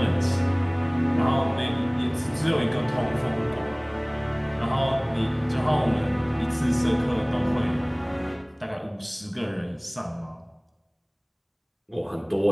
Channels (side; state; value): both; identical; correlation 1.00